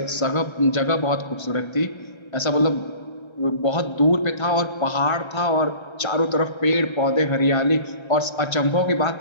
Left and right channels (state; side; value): late; right; 1.3 ms